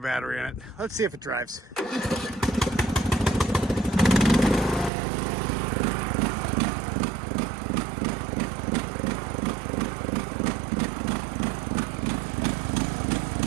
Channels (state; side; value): drops out; left; at 4.9 s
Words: in it. Let's see if it drives.